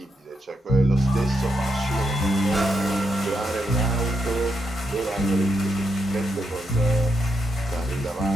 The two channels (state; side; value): normal; both; correlation 0.83